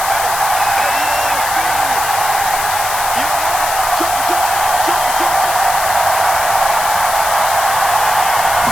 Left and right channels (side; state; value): left; noise; hiss, 5 dB below the sound